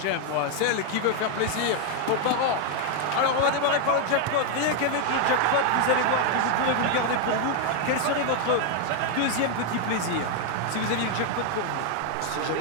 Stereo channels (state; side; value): different; both; correlation 0.00